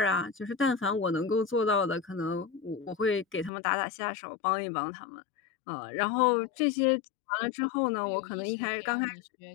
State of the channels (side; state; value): right; drops out; at 3.5 s